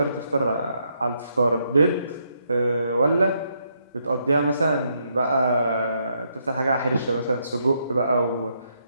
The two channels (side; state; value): both; inverted; correlation -0.76